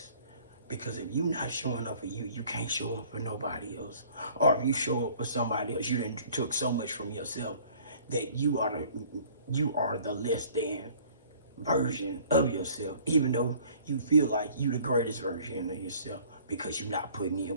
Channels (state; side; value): inverted; both; correlation -0.53